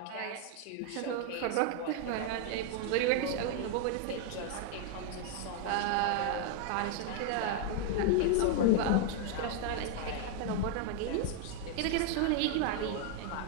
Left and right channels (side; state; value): both; different; correlation 0.00